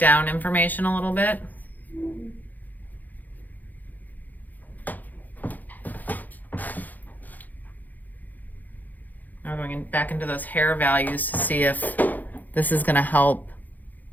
information a little bit. Now going back into those hair values to see if this is going to help.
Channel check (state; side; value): late; right; 0.083 ms